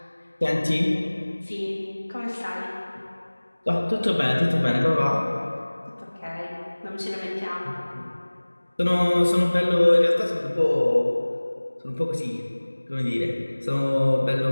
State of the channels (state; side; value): inverted; both; correlation -1.00